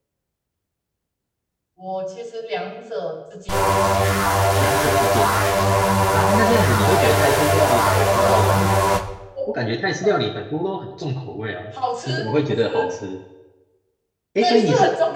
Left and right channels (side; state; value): both; identical; correlation 1.00